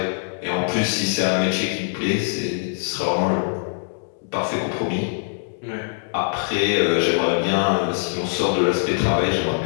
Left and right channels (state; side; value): silent; right; digital silence